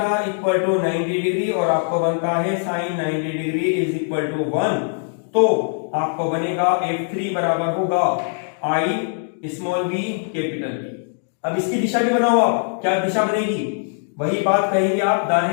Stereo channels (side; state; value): right; silent; digital silence